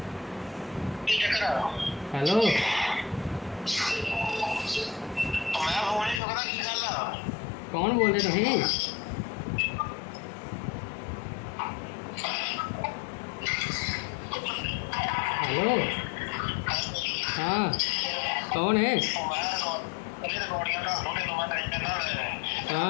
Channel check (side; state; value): right; drops out; at 6.2 s